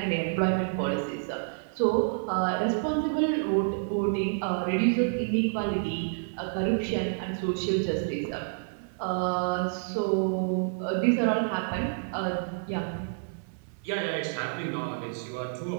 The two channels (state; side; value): silent; left; digital silence